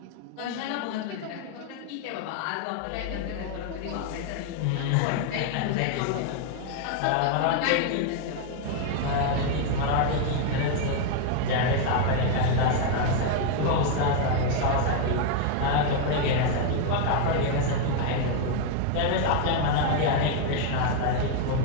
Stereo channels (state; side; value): different; both; correlation 0.01